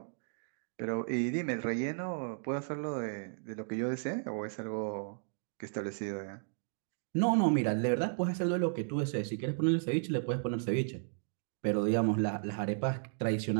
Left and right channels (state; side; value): silent; left; digital silence